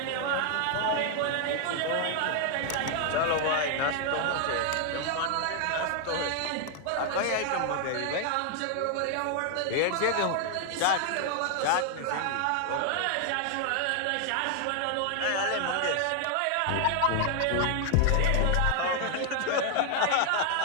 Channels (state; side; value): different; both; correlation 0.00